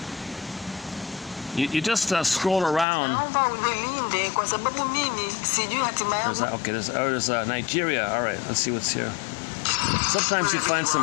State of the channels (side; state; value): right; drops out; at 2.9 s